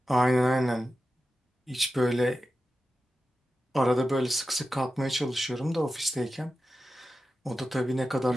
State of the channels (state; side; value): normal; both; correlation 0.91